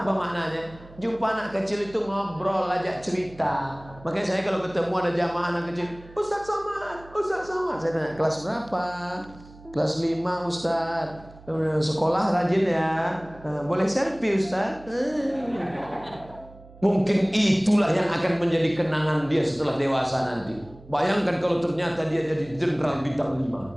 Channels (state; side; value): noise; right; hum, 21 dB below the sound